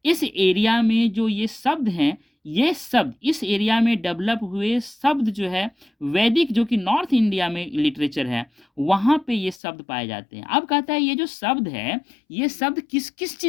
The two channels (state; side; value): drops out; right; at 9.6 s